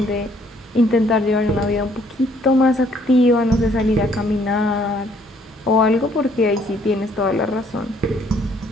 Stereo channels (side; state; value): both; normal; correlation 0.64